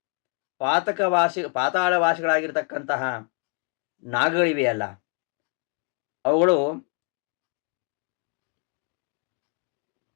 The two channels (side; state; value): right; quieter; 35.9 dB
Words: ಪಾತಾಳವಾಸಿಗಳಾಗಿರ್ತಕ್ಕಂತಹ ನಾಗಗಳಿವೆಯಲ್ಲ, ಅವುಗಳು